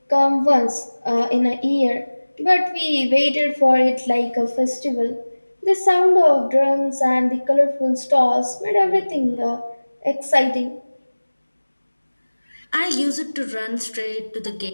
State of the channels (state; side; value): inverted; both; correlation -1.00